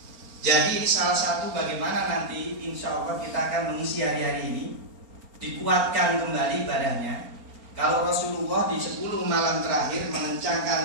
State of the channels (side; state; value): left; late; 4.4 ms